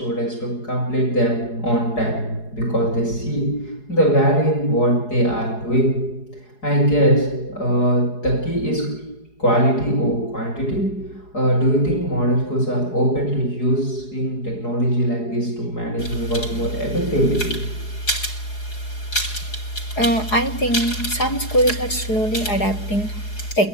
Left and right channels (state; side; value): late; right; 4.8 ms